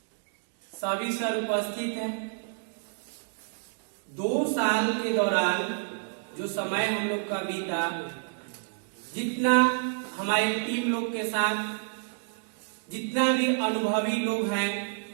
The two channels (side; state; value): left; silent; digital silence